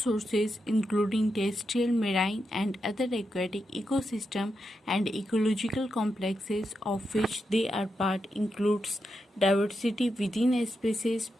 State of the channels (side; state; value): both; normal; correlation 0.86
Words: including terrestrial, marine and other aquatic ecosystem and ecological complexes of which they are part includes diversity within a species,